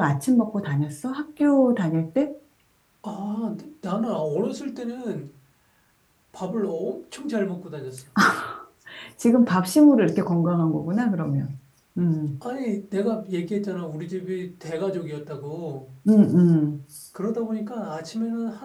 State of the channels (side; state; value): both; identical; correlation 1.00